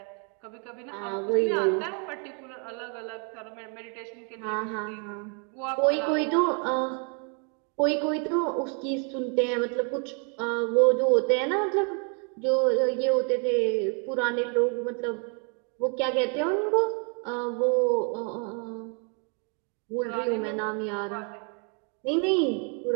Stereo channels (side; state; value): left; quieter; 38.7 dB